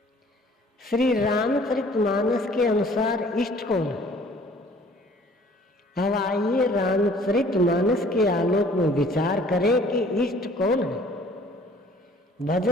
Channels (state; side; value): normal; both; correlation 0.54